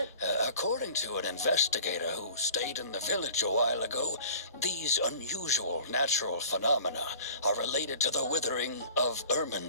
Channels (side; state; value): both; inverted; correlation -0.44